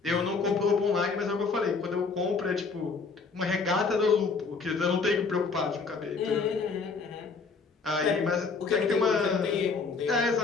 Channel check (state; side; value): quieter; right; 4.6 dB